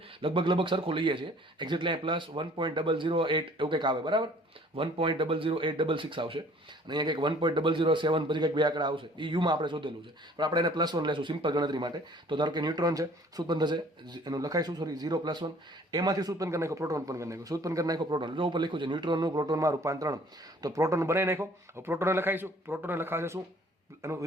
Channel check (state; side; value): normal; both; correlation 0.55